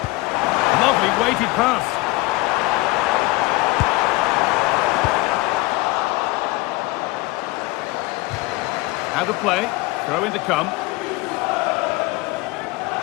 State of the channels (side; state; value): right; quieter; 22.1 dB